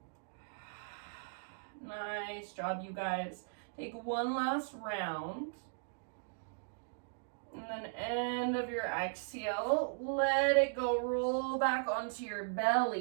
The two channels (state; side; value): silent; left; digital silence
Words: Nice job, you guys. Take one last round. And then end of your exhale, let it go, roll back onto your